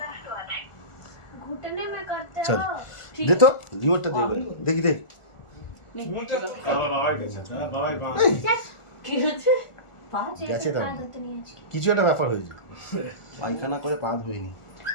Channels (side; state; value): right; late; 1.4 ms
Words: घुटने में करते चल। हो দে তো রিমোটটা দে দেখি দে কি হচ্ছে পা গেছে তার आदत नहीं है इसकी কিছু একটা ব্যাপার হয়েছে পায়খানা করে পা ধুইনি